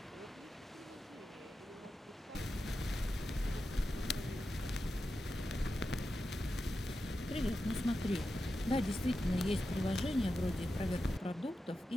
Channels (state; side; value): normal; both; correlation 0.90